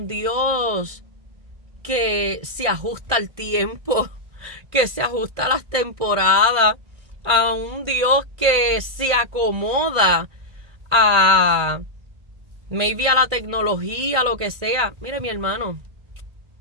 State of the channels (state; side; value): late; left; 1.7 ms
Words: Dios que se ajusta al tiempo, que se ajusta a las temporadas, a un Dios que se acomoda a maybe a la tecnología, lo que sea. Mire, mi hermano,